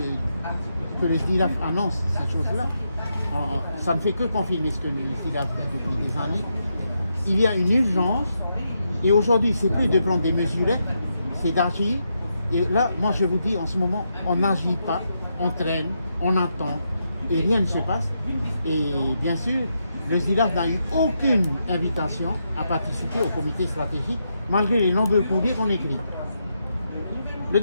que le SDILAF annonce cette chose-là. Ça ne fait que confirmer ce que le SDILAF fait depuis des années. Il y a une urgence. Et aujourd'hui, c'est plus de prendre des mesurettes, c'est d'agir. Et là, moi, je vous dis, en ce moment, on n'agit pas, on traîne, on attend, et rien ne se passe. Et bien sûr, le SDILAF n'a eu aucune invitation à participer au comité stratégique malgré les nombreux courriers qu'on écrit. Le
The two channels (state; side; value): inverted; both; correlation -0.82